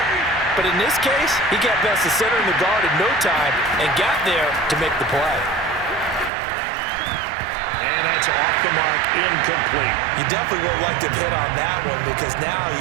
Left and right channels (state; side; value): drops out; left; at 6.3 s